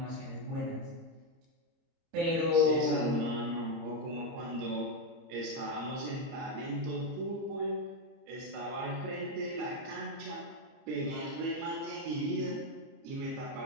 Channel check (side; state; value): left; late; 30 ms